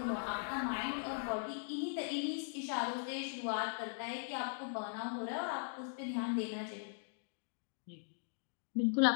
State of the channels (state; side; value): silent; right; digital silence